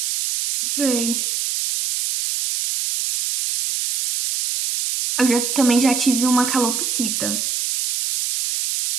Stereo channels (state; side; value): noise; right; hiss, 1 dB below the sound